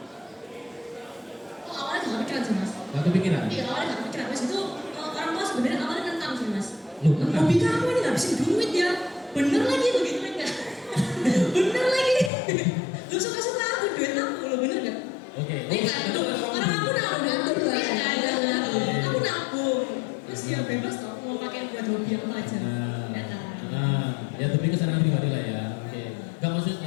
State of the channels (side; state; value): right; drops out; at 12.3 s